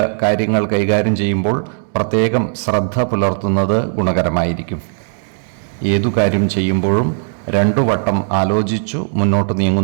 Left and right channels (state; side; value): silent; left; digital silence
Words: കാര്യങ്ങൾ കൈകാര്യം ചെയ്യുമ്പോൾ പ്രത്യേകം ശ്രദ്ധ പുലർത്തുന്നത് ഗുണകരമായിരിക്കും. ഏതു കാര്യം ചെയ്യുമ്പോഴും 2 വട്ടം ആലോചിച്ചു മുന്നോട്ട്